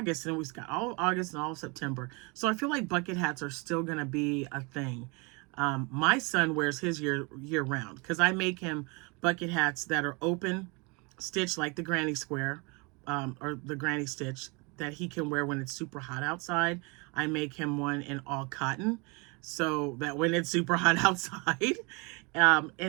and we've got all of August and all of September. So I feel like bucket hats are still going to be a thing. My son wears his year round because I make him bucket hats that are open stitch like the granny square or the granny stitch that he can wear when it's super hot outside. I make him one in all cotton so that when it's super hot outside.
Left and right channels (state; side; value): quieter; left; 29.6 dB